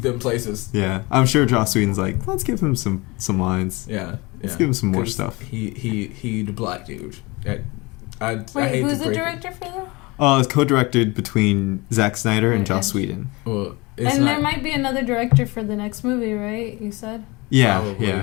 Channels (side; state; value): right; quieter; 24.7 dB